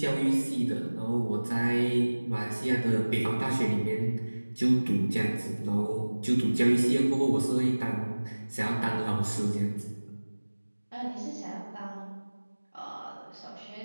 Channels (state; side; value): inverted; both; correlation -1.00